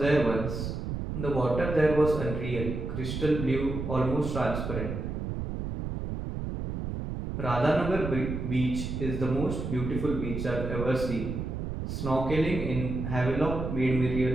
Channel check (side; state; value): right; noise; rumble, 4 dB below the sound